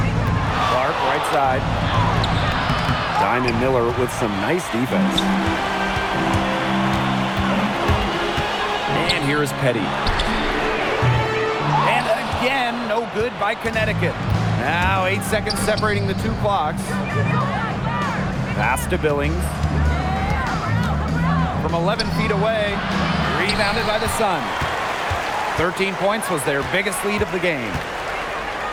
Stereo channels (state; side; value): identical; both; correlation 1.00